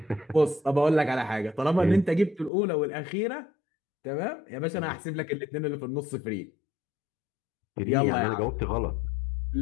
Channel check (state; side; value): drops out; right; at 2.5 s